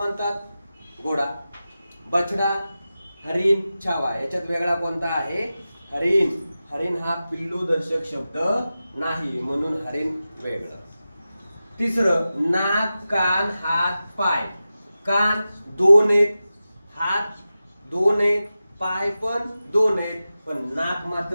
घोडा. बछडा, हरिण, छावा याच्यात वेगळा कोणता आहे? हरिण. हरिण हा पिल्लू दर्शक शब्द नाही, म्हणून हरिण वेगळं. तिसरं, नाक, कान, हात, पाय. कान 2 आहेत, हात 2 आहेत, पाय पण 2 आहेत, पण नाक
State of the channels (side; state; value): both; inverted; correlation -0.94